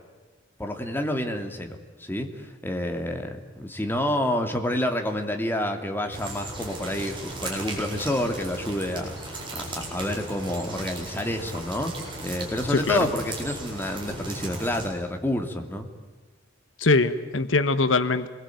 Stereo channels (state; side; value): normal; both; correlation 0.48